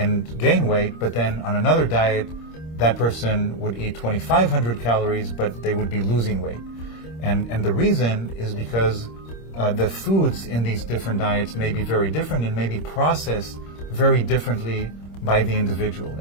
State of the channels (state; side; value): late; right; 26 ms